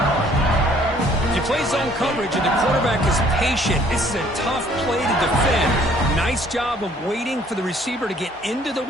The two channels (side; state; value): both; normal; correlation 0.60